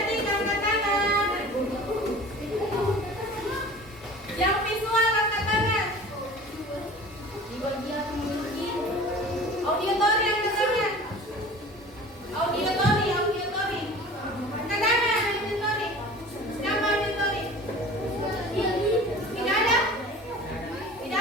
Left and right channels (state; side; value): normal; both; correlation 0.41